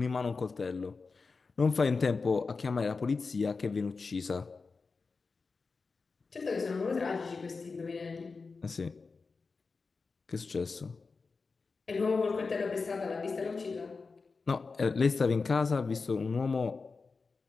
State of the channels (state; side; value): quieter; right; 4.4 dB